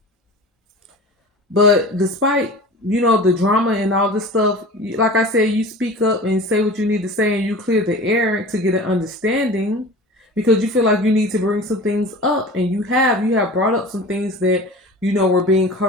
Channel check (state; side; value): normal; both; correlation 0.37